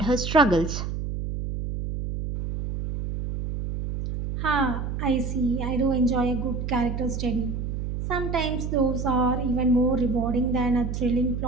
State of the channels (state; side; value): noise; right; hum, 4 dB below the sound